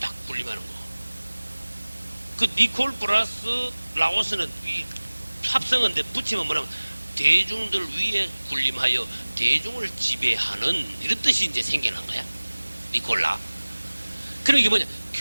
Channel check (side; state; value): both; inverted; correlation -1.00